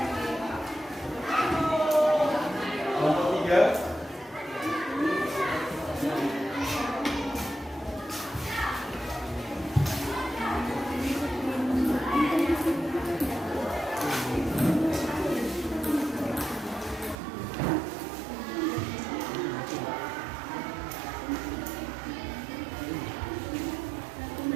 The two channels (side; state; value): left; drops out; at 17.2 s